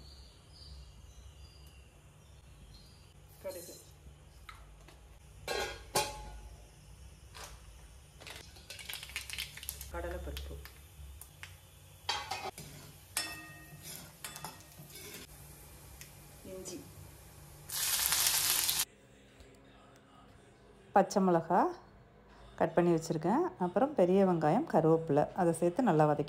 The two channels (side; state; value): both; identical; correlation 1.00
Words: கடுகு, கடலைப்பருப்பு, இஞ்சி, பச்சை மிளகாய் கட் பண்ணி வச்சுருக்கேன். அப்புறம் பெரிய வெங்காயம், கருவேப்பிலை அதை சேர்த்து நல்லா